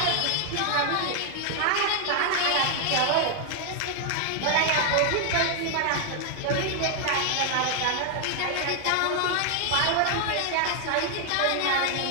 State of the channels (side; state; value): both; different; correlation 0.00